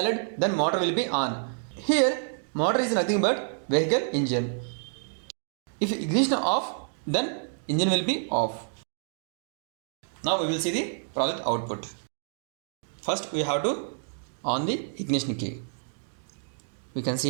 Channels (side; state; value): left; silent; digital silence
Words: then motor will be on. Here motor is nothing but vehicle engine. If ignition off, then engine will be off. Now we will see the project output. First we have to on the ignition key. We can